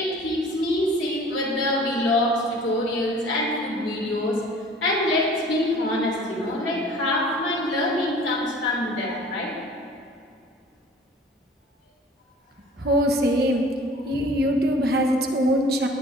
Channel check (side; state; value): both; normal; correlation 0.48